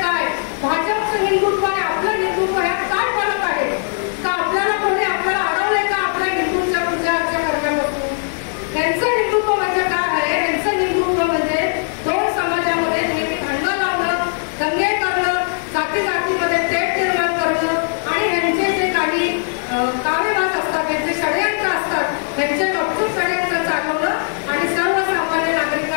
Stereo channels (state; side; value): silent; right; digital silence